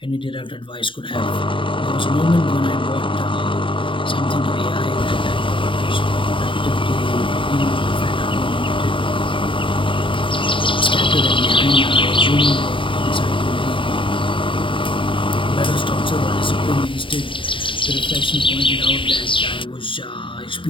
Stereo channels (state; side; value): late; right; 0.25 ms